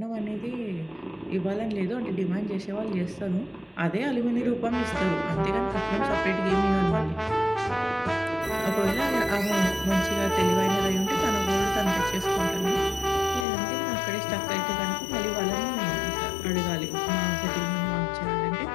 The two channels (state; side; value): drops out; right; at 13.5 s